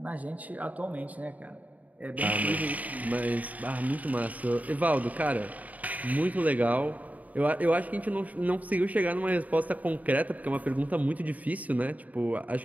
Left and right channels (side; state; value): left; late; 0.073 ms